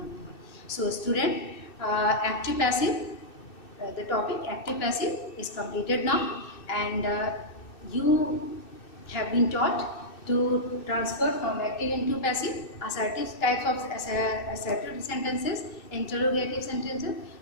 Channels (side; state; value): right; late; 2.6 ms